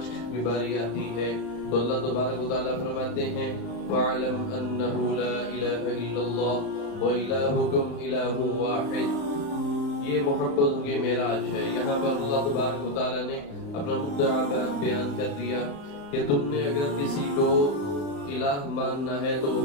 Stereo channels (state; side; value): late; right; 35 ms